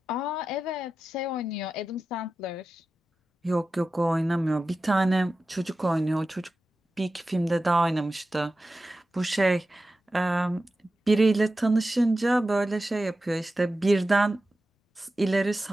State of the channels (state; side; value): normal; both; correlation 0.93